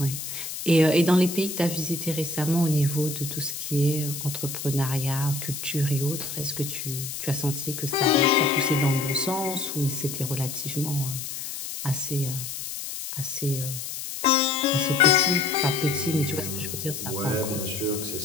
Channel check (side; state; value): left; noise; hiss, 7 dB below the sound